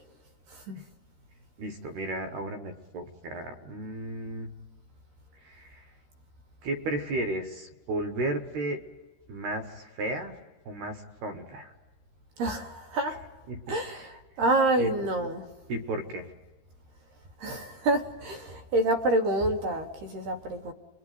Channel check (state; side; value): late; left; 13 ms